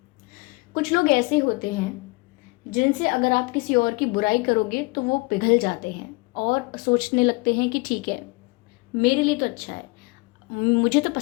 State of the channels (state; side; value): quieter; right; 26.6 dB